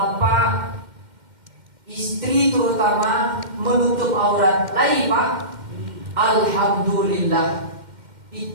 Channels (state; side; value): late; left; 2.1 ms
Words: istri terutama menutup aurat. Lagi pak, alhamdulillah,